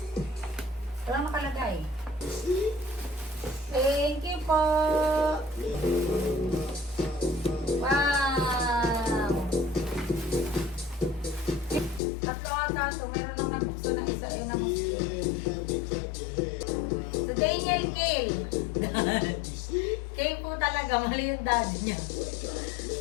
Walang nakalagay. Thank you po. Wow. Tatlo ata ito. Meron nang nabukso na isa. Ayun na so, Daniel Kale. Kale po talaga. Mali yung daddy niya.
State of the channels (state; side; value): drops out; right; at 12.0 s